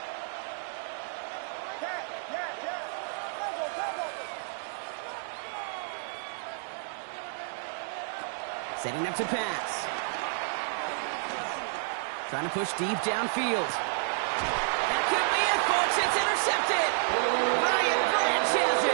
Setting up to pass. Trying to push deep downfield. That could be it, folks. It's intercepted. Ryan Branch has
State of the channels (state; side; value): silent; left; digital silence